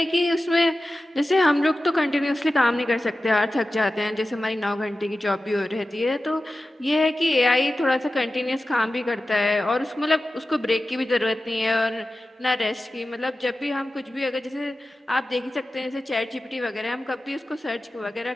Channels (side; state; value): both; normal; correlation 0.94